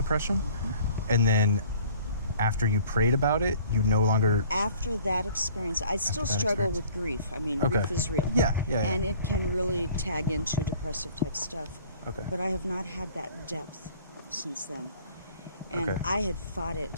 and then after you prayed about it, you no longer... After that experience, I still that struggle experience. with grief. I mean, Okay. grief is real. Yeah. And it can really tag into depressive type stuff. Okay. But I have not had that depth since then. And Okay. I had fought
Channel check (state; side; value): inverted; both; correlation -0.53